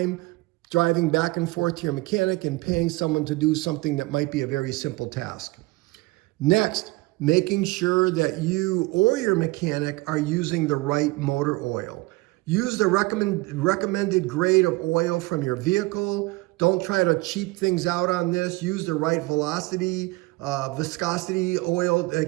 driving back and forth to your mechanic and paying someone to do something that might be a very simple task. Next, making sure that you or your mechanic are using the right motor oil. Use the recommended grade of oil from your vehicle. Don't try to cheap things out on this. Use the right viscosity oil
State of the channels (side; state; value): left; quieter; 22.4 dB